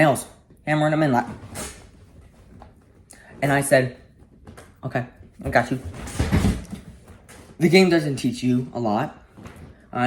hammering them in like. And I said, okay, I got you. The game doesn't teach you a lot,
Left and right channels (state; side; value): identical; both; correlation 1.00